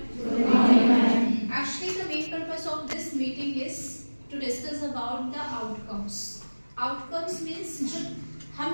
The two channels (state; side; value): inverted; both; correlation -1.00